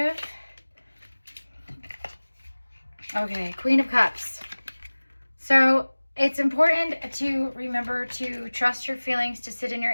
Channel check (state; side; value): inverted; both; correlation -1.00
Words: Okay, Queen of Cups. So it's important to remember to trust your feelings, to sit in your